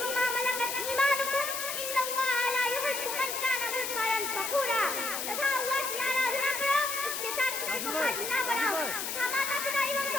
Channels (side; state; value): left; noise; hiss, 3 dB below the sound